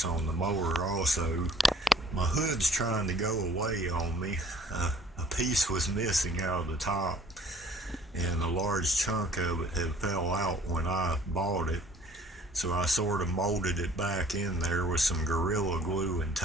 on the mower also. My hood's trying to go away on me. A piece was missing out of the top, and a large chunk of it had fell out when I bought it, so I sort of molded it back in there with some Gorilla Glue and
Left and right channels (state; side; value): normal; both; correlation 0.55